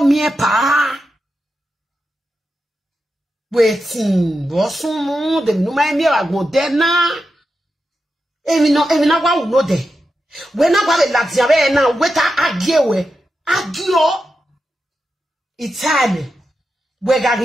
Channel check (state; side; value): normal; both; correlation 0.89